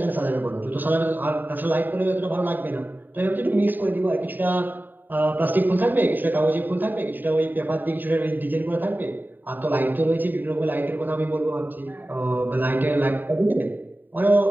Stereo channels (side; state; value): left; late; 0.091 ms